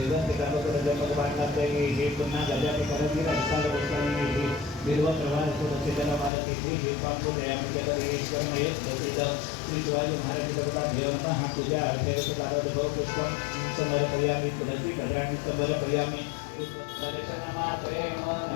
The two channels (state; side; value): drops out; right; at 6.3 s